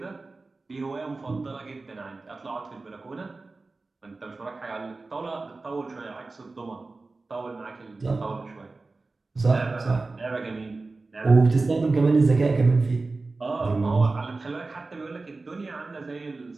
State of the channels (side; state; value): left; quieter; 3.6 dB